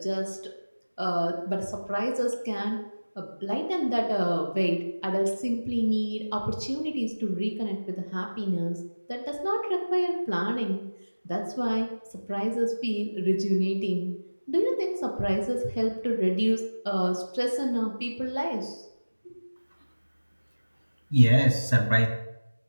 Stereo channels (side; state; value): both; inverted; correlation -1.00